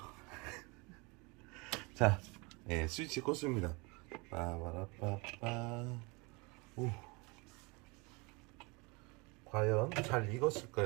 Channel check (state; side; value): quieter; left; 27.9 dB